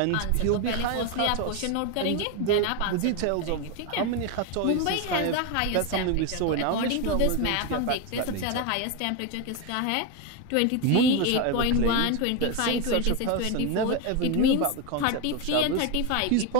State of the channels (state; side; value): different; both; correlation 0.02